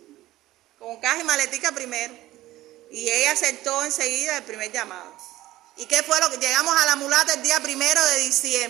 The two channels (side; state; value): left; quieter; 16.1 dB